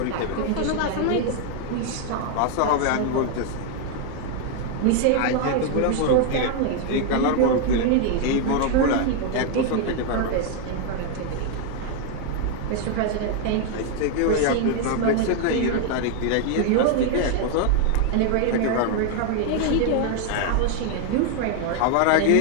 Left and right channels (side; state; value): both; different; correlation 0.00